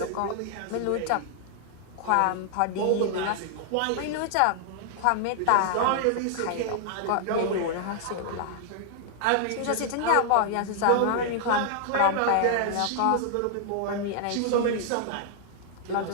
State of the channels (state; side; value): different; both; correlation -0.01